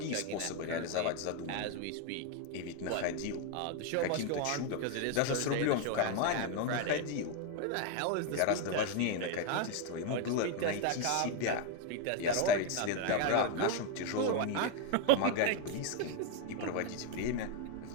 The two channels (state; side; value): different; both; correlation 0.01